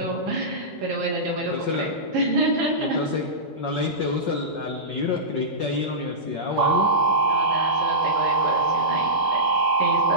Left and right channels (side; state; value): both; normal; correlation -0.15